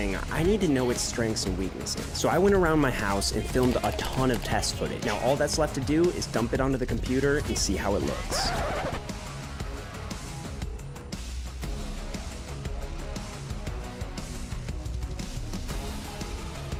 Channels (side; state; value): both; identical; correlation 1.00